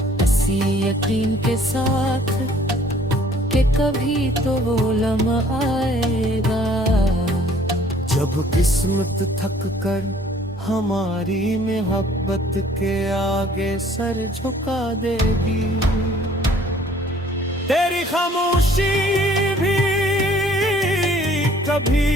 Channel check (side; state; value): both; normal; correlation 0.57